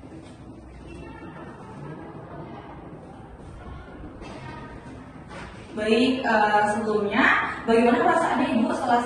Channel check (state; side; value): identical; both; correlation 1.00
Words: Baik, sebelumnya bagaimana perasaan Ibu setelah